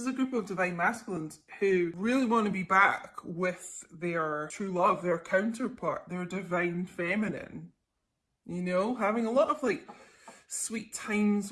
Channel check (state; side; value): identical; both; correlation 1.00